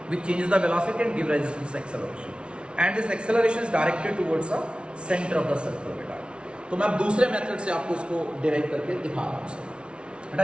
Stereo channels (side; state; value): left; late; 0.058 ms